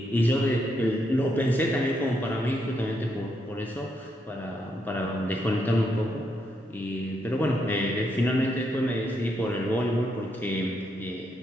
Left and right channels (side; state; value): both; normal; correlation 0.79